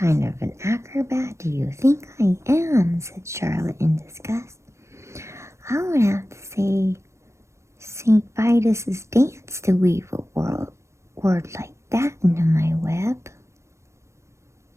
of an acrobat do you think I am? Said Charlotte in disgust. I would have to say St. Vitus's dance to weave a word like that into my web.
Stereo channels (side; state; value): left; late; 0.13 ms